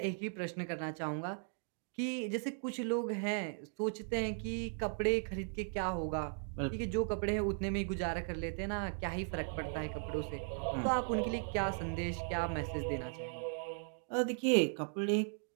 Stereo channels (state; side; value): silent; left; 53 dB below the other